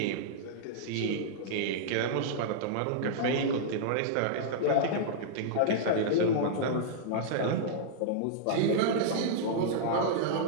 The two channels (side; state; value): both; different; correlation -0.02